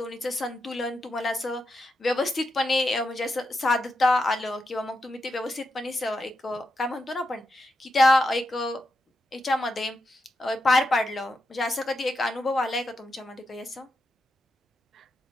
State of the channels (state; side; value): normal; both; correlation 0.86